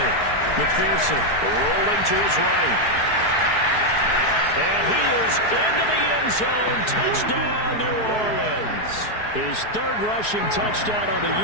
McPherson rolling to his right. And he is into the end zone. Touchdown, New Orleans. His 3rd rushing touchdown on the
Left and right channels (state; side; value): late; right; 4.7 ms